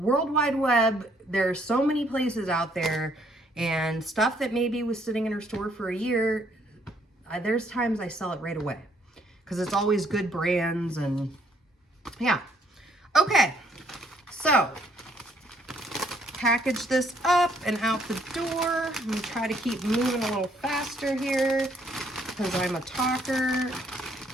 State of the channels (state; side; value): normal; both; correlation 0.67